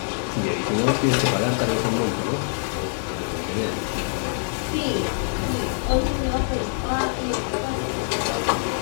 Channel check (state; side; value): silent; right; digital silence